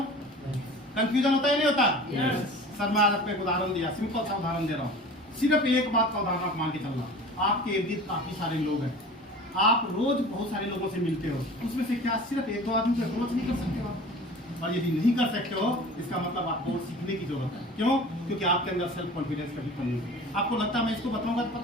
कंफ्यूजन होता है नहीं होता? सर मैं आज आपको एक उदाहरण दिया, सिंपल सा उदाहरण दे रहा हूँ। सिर्फ एक बात का उदाहरण आप मान के चलना। आपके इर्द गिर्द काफी सारे लोग हैं, आप रोज बहुत सारे लोगों से मिलते हो, उसमें से क्या सिर्फ 1-2 आदमी को अप्रोच नहीं कर सकते हो? और यदि नहीं कर सकते हो इसका मतलब आपको सीखने की जरूरत है। क्यों? क्योंकि आपके अंदर सेल्फ कॉन्फिडेंस कभी कमी है। आपको लगता है मैं इसको बताऊंगा तो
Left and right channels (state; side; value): normal; both; correlation 0.40